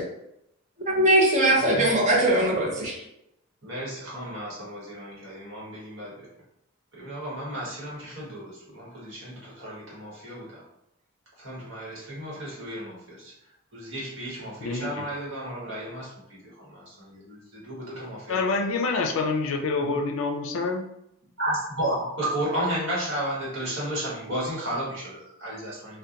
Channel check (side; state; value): both; normal; correlation -0.02